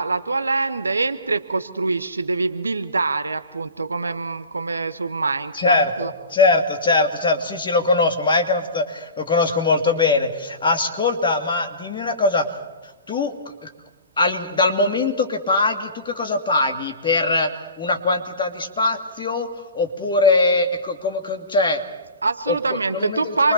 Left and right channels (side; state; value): both; inverted; correlation -0.40